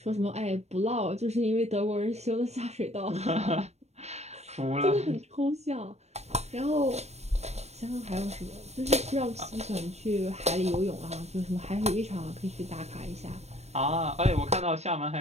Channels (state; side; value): late; left; 0.31 ms